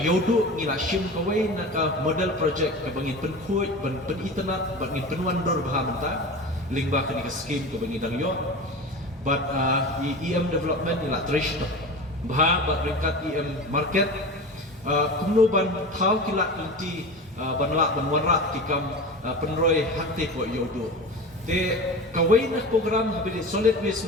du ni la shim kawai na ka model project ka bangin penkhoi ban pen internet ban ngin penwan dor bah menta lingba ka ni ka scheme ka bangin dang yo but EM development ni la trish bah ba ringkat EM market kumno ban thau kilat nanti banlak banwarat tikam penroi hakte ko yodo te kawai na program habili solid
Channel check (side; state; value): both; normal; correlation 0.31